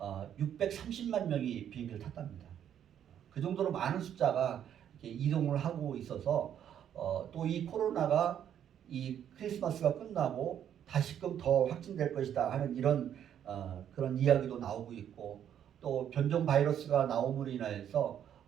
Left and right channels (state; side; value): quieter; left; 9.7 dB